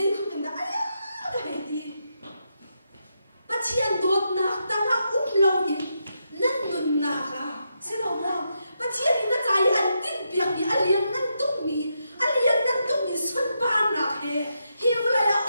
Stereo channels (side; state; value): both; inverted; correlation -0.83